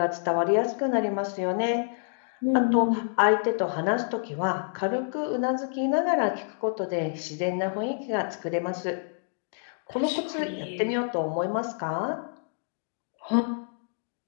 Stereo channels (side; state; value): right; silent; digital silence